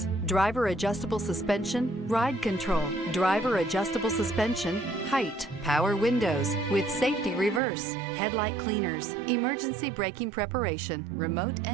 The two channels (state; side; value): drops out; left; at 7.6 s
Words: driver adjustable suspension, ride control, driver adjustable suspension, height, power windows with safety reverse, headlight cleaners, emergency braking preparation, remote